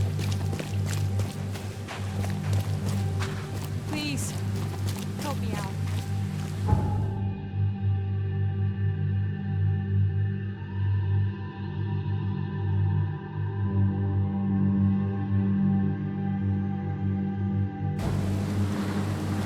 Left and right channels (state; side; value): identical; both; correlation 1.00